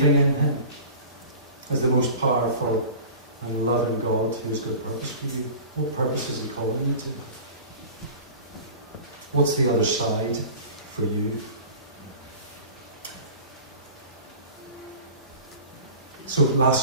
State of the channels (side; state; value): both; inverted; correlation -0.39